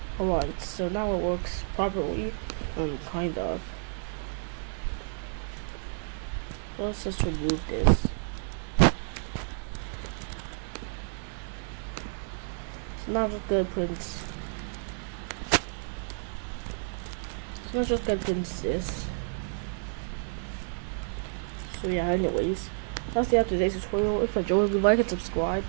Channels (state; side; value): silent; left; 58 dB below the other